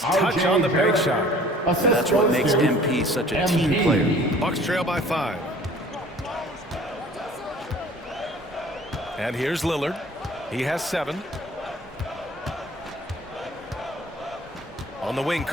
touch on the bank shot. That's what makes MP such a team player. Bucks trail by 5. And here's Lillard. He has 7. On the wing,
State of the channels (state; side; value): normal; both; correlation 0.50